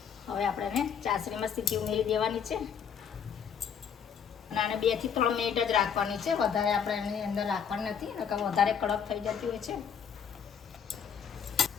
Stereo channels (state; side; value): quieter; right; 7.4 dB